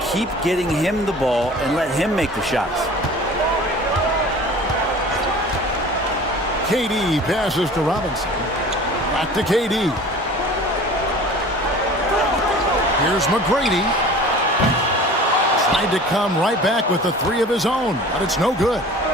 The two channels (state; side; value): normal; both; correlation 0.43